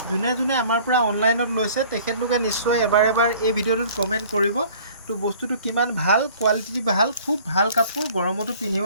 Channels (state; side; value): inverted; both; correlation -0.51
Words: যোনে যোনে আমাৰ পৰা অনলাইনত লৈছে তেখেতলোকে নিশ্চয় এবাৰ এই ভিডিঅ'টোত কমেণ্ট কৰিব। তো বস্তুটো কিমান ভাল, কোৱালিটি ভাল, খুব ভাল কাপোৰ, গৰমতো পিন্ধিব